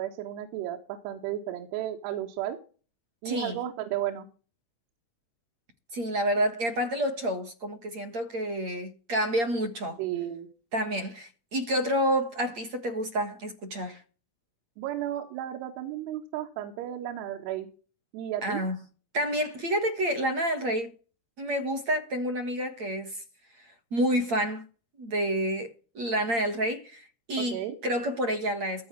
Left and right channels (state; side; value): late; left; 8.7 ms